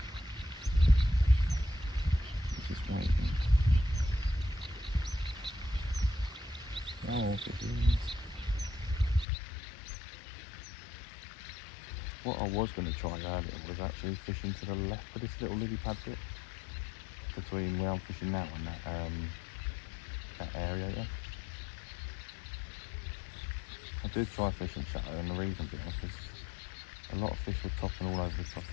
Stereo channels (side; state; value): right; drops out; at 9.2 s